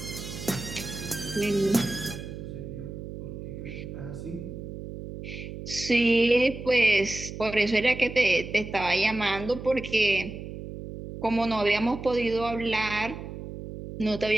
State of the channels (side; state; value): right; noise; hum, 10 dB below the sound